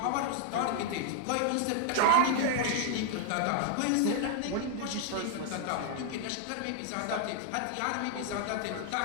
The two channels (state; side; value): different; both; correlation 0.00